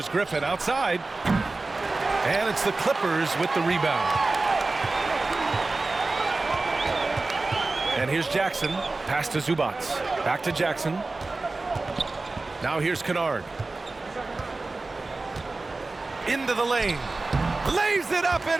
Griffin outside. And it's the Clippers with the rebound. And here's Jackson. Pass to Zubac. Back to Jackson. Now here's Kennard. Into the lane. Lays it up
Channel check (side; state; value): left; quieter; 3.4 dB